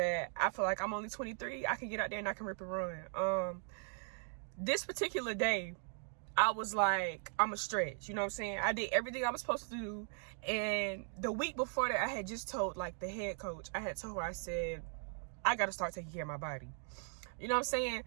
I feel like I'm only 23. I can get out there and I can rip and run. This particular day, I was like, I'm a stretch, you know what I'm saying? I did everything I was supposed to do. And the week before that, I had just told like the head coach, I told her, I said, I got to start taking care of my body. You know what I'm saying?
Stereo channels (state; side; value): silent; left; 52 dB below the other